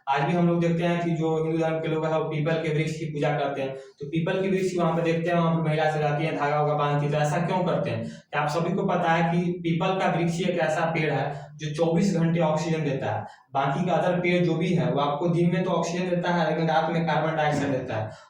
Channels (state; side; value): identical; both; correlation 1.00